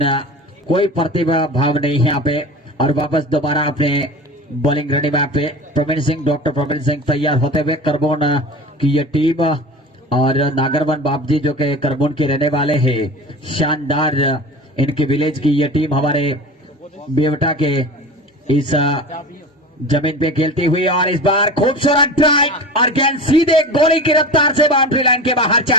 कोई प्रतिभा भाव नहीं है यहाँ पे और वापस दोबारा अपने बॉलिंग रेडी मैप पे प्रवीण सिंह डॉक्टर प्रवीण सिंह तैयार होते हुए करबोन की ये टीम और नागरवन बापजी जो कि करबोन के रहने वाले हैं। शानदार इनकी विलेज की ये टीम हमारे बेवटा के इस जमीन पे खेलती हुई और इस बार खूबसूरत ड्राइव और गेंद सीधे गोली की रफ्तार से बाउंड्री लाइन के बाहर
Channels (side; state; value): both; normal; correlation 0.33